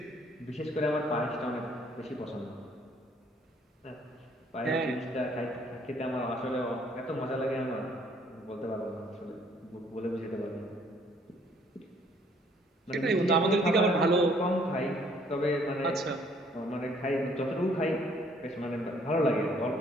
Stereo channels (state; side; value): normal; both; correlation 0.62